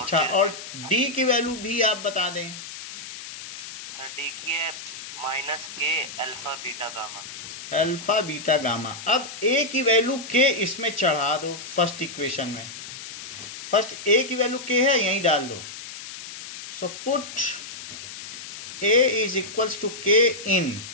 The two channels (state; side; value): noise; left; hiss, 11 dB below the sound